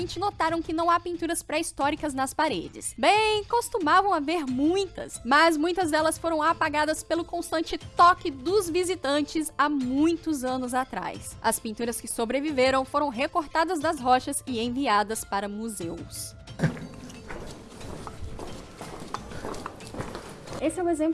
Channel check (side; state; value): both; identical; correlation 1.00